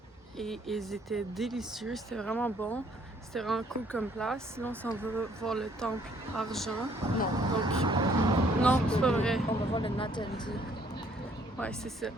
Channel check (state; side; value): normal; both; correlation 0.63